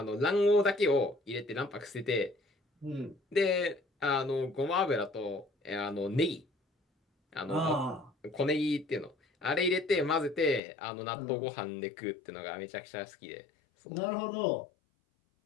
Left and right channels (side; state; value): right; drops out; at 10.6 s